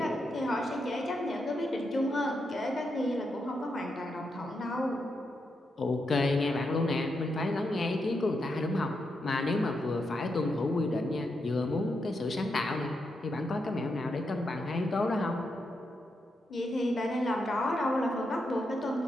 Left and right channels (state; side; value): normal; both; correlation 0.84